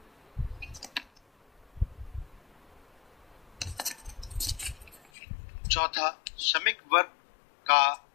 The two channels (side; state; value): right; drops out; at 5.0 s